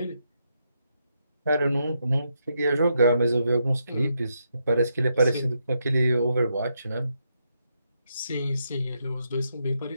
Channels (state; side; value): inverted; both; correlation -0.80